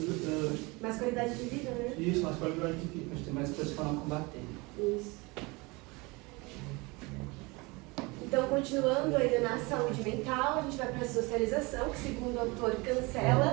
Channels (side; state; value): left; quieter; 25.5 dB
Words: mais qualidade de vida, né? Isso, mais qualidade de vida. A gente tem mais coisas para não combater. Isso. Então, continuando ainda na saúde mental, a gente vai para a socialização, que segundo o autor